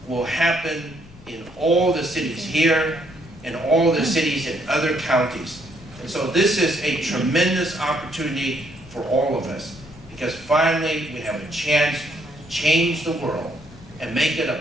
will happen in all the cities here and all the cities in other counties. And so this is a tremendous opportunity for all of us, because finally we have a chance to change the world and make it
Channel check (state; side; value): noise; left; rumble, 20 dB below the sound